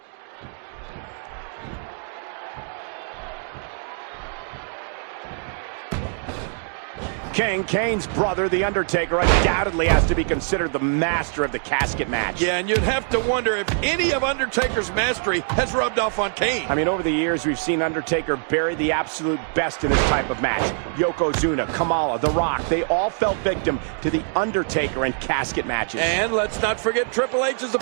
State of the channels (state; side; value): silent; left; 63 dB below the other